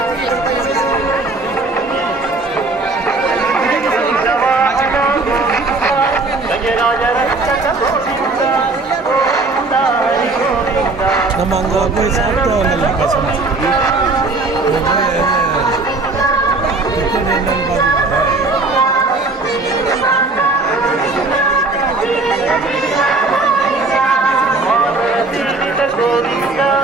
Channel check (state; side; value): quieter; left; 3.4 dB